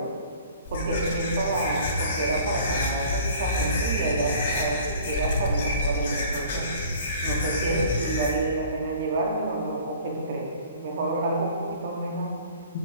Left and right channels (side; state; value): both; inverted; correlation -0.49